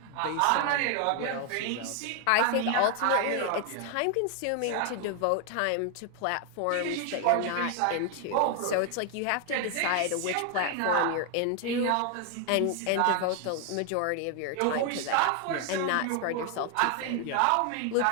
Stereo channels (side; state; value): both; different; correlation 0.01